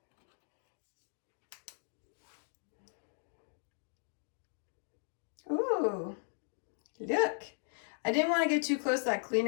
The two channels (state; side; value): silent; right; digital silence